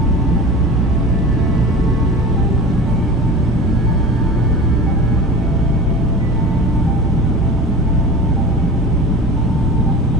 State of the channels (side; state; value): both; normal; correlation 0.36